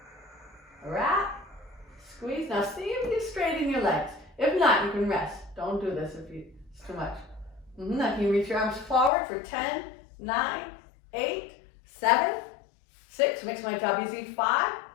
wrap, squeeze. Now see if you straighten your legs. If not, you can rest. Don't do this if it's too much. Now can you reach your arms forward for 10, 9, 8, 7, 6. Makes my job easy. 5,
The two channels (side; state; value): right; drops out; at 9.1 s